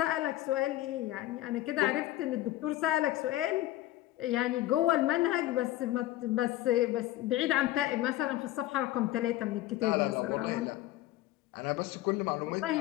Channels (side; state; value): right; quieter; 15.3 dB